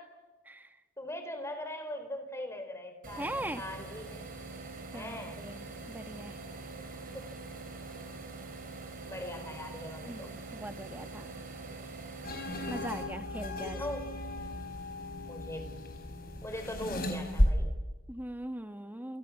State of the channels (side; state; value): both; normal; correlation 0.71